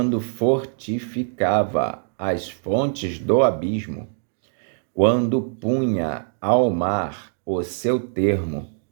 fortificava as fontes do abismo, quando punha ao mar o seu termo,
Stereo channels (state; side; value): silent; left; 63 dB below the other